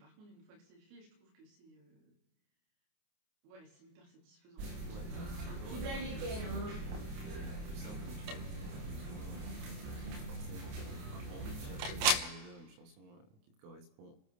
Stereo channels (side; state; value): left; late; 28 ms